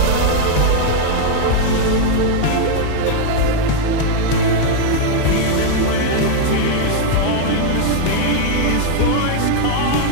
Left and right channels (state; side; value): different; both; correlation 0.00